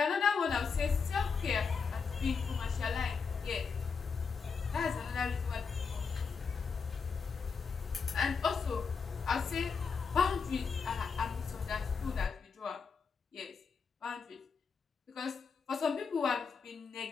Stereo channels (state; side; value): quieter; right; 5.5 dB